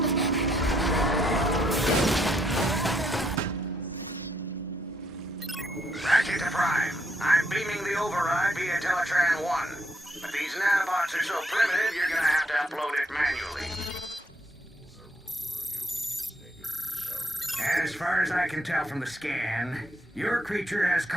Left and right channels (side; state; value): both; normal; correlation 0.73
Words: Ratchet to Prime. I'm beaming the override via Teletran 1. But these nanobots are so primitive, you're gonna have to upload it manually. As far as I can tell from the scan, your creature has